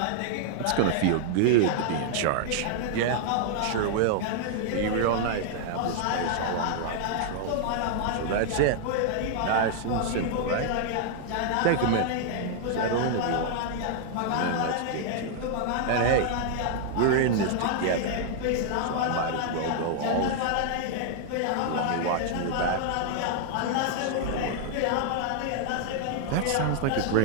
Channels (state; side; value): different; both; correlation -0.01